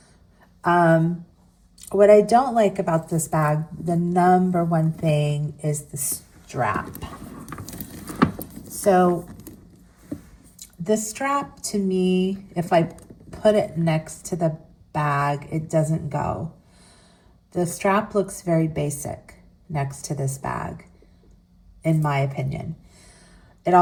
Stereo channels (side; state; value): both; identical; correlation 1.00